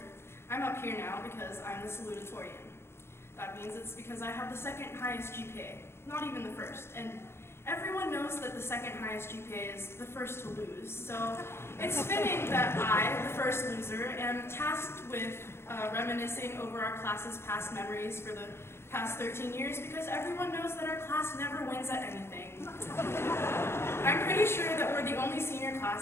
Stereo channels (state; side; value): late; right; 0.12 ms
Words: I'm up here now because I'm the Salutatorian. That means it's because I have the second highest GPA, not even the first. And everyone knows that the second highest GPA is the first to lose. So it's fitting that I, the first loser, am tasked with reminiscing over our class's past memories for the past 13 years because everyone knows that our class never wins at anything. I'm pretty sure that we're the only senior